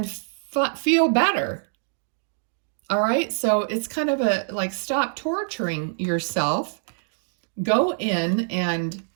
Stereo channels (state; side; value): silent; left; digital silence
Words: feel better. All right, so it's kind of a like, stop torturing yourself. Go in and